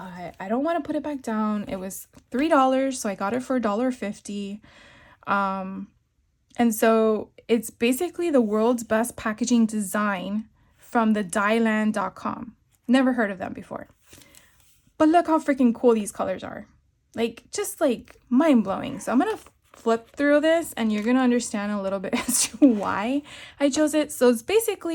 I don't want to put it back down. It was $3, so I got it for $1.50. And so it's basically the world's best packaging design from the dyeland.com. Never heard of them before. But look how freaking cool these colors are. Like, just like mind-blowing. So I'm going to flip through this and you're going to understand a little bit as to why I chose it. So it's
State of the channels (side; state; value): both; identical; correlation 1.00